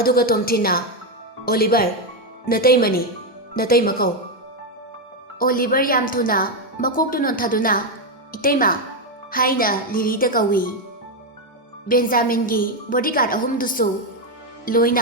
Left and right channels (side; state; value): both; normal; correlation 0.05